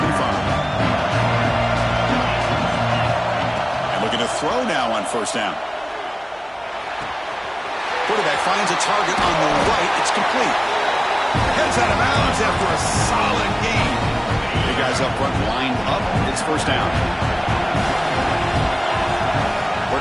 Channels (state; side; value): identical; both; correlation 1.00